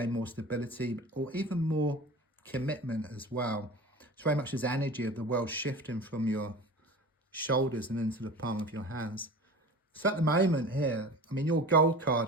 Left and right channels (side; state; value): both; normal; correlation 0.36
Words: more stability, or even more commitment as well. It's very much this energy of the world shifting from your shoulders and into the palm of your hands. So at the moment here, I mean, your gold